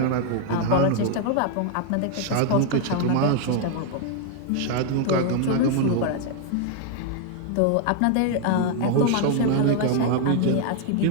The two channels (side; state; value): both; different; correlation 0.00